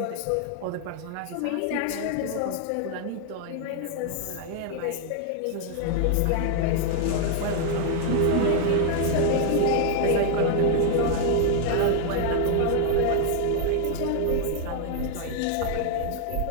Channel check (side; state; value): both; different; correlation 0.00